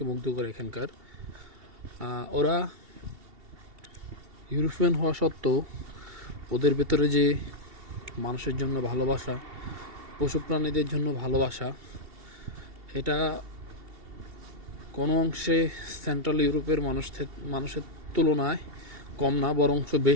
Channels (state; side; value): late; left; 2.7 ms